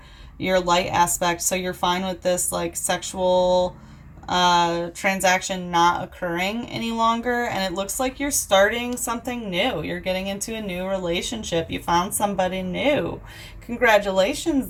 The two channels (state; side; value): identical; both; correlation 1.00